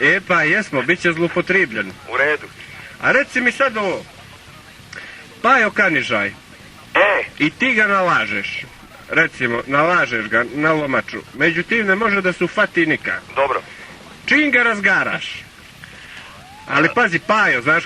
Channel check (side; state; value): both; identical; correlation 1.00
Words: Pa jesmo, bit će zloupotrebljen. U redu. A reci mi sad ovo. Pajo Kanižaj. I ti ga nalažeš. Recimo, nalažeš ga na lomaču. Međutim, ne može da se ufati nikak. Dobro. Čim ga razgaraš. Ali pazi, Pajo, znaš